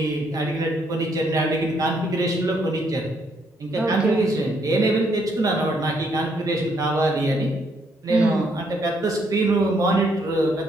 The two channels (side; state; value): both; normal; correlation 0.72